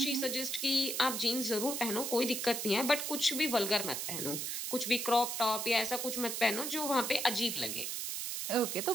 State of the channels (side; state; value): right; noise; hiss, 3 dB below the sound